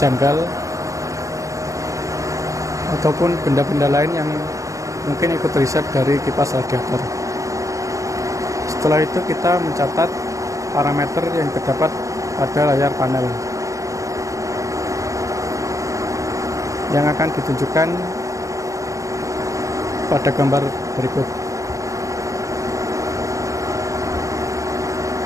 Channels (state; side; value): late; left; 0.16 ms